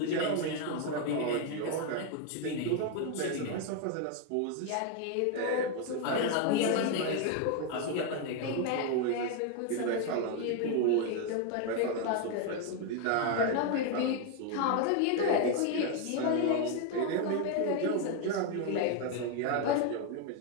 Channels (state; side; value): different; both; correlation 0.01